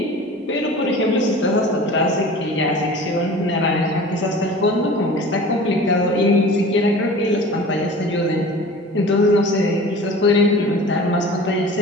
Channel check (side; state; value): both; normal; correlation 0.40